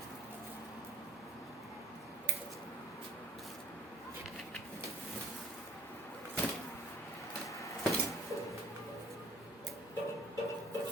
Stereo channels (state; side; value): normal; both; correlation 0.46